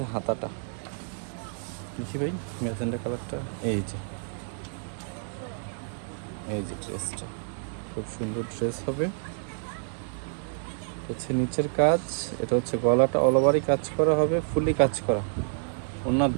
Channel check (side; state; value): left; silent; digital silence